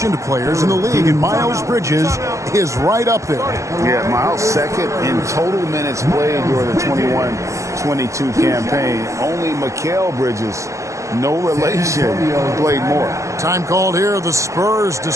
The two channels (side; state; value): left; late; 0.15 ms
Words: players in the league, and Miles Bridges is right up there. Yeah, Miles second in total minutes played during the 21-22 campaign. Only Mikal Bridges, no relation, played more. Time called here. The Spurs